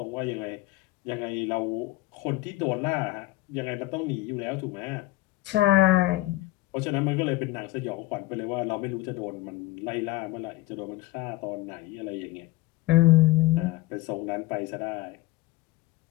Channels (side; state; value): right; quieter; 18.5 dB